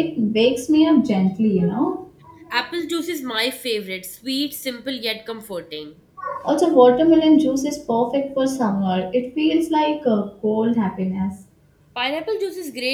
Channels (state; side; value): identical; both; correlation 1.00